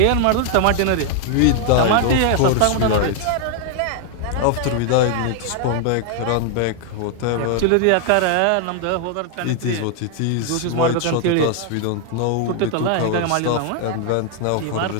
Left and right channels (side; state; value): both; different; correlation 0.00